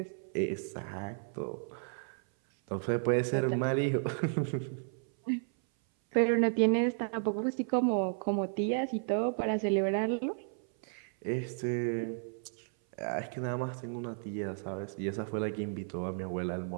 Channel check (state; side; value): silent; left; 56 dB below the other